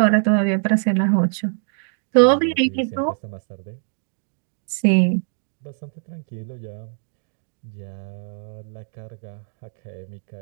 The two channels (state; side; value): silent; left; 63 dB below the other